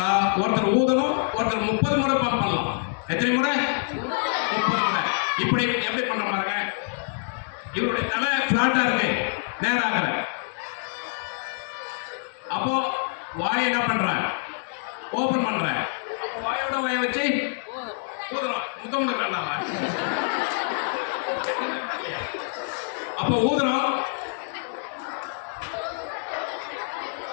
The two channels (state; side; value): silent; right; 61 dB below the other